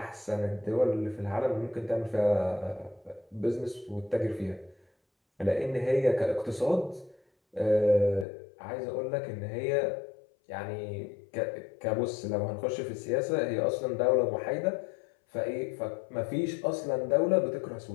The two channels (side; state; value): right; drops out; at 8.2 s